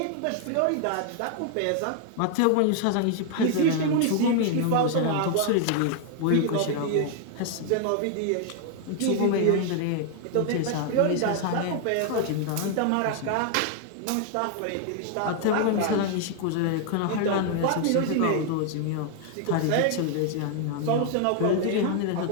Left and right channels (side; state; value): both; different; correlation 0.00